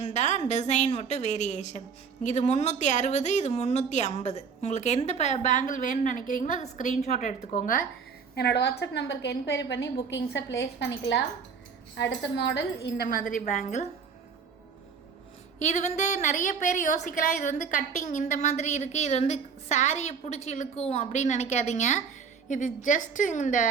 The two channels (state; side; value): quieter; left; 6.1 dB